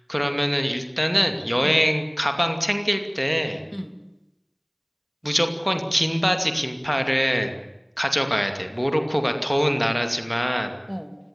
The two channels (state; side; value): identical; both; correlation 1.00